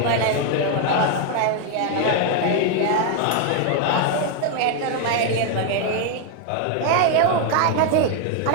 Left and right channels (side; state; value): both; different; correlation 0.00